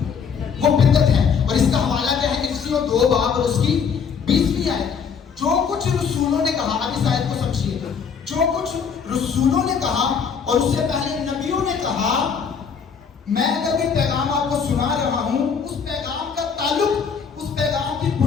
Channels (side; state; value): right; quieter; 6.4 dB